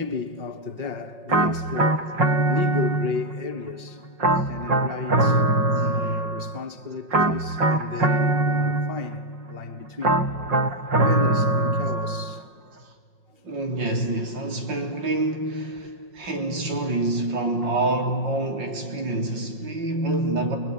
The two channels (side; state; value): left; late; 5.5 ms